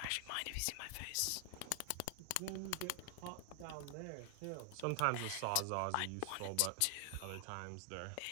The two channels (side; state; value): both; different; correlation 0.00